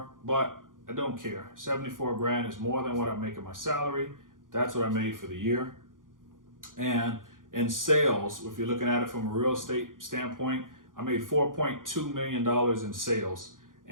but I don't care. 74 grand is more than what I'm making my salary. That's what I made for the year. And in sales, if you're looking at it from a real estate standpoint, I made $4.2 million in sales.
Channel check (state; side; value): late; left; 0.89 ms